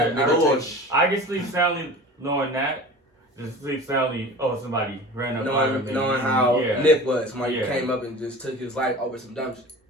I'd nigga rather- take- I can sleep soundly knowing that. Just sleep soundly. Oh, somebody ran up on me. knowing how Yeah. Nip was. Somebody Yeah. came up and just took his life over some dumb shit.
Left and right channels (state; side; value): normal; both; correlation 0.38